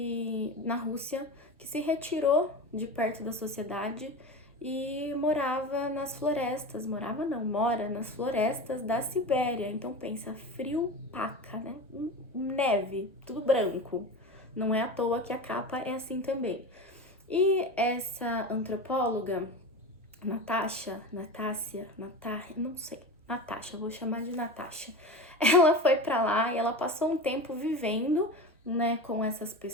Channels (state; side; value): normal; both; correlation 0.28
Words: na Rússia que se retirou de perto da sociedade e morava nas florestas, morava não, mora nas florestas da Sibéria. Então pensa, frio paca, né? Neve, tudo branco. Não é à toa que a capa é assim também. E essa antropóloga, não sei, Natasha, vou chamar de Natasha. Ela foi para lá e ela passou um tempo vivendo, né, com essas